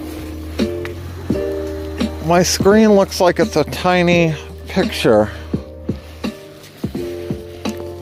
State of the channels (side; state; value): both; identical; correlation 1.00